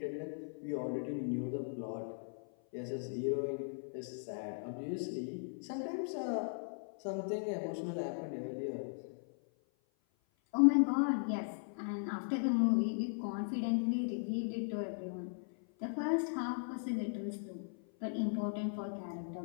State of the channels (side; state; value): right; silent; 52 dB below the other